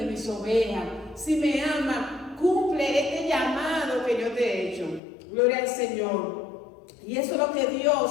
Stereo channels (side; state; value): right; drops out; at 5.0 s